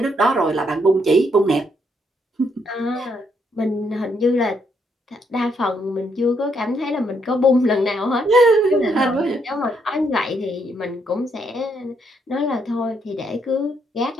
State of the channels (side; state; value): both; normal; correlation 0.74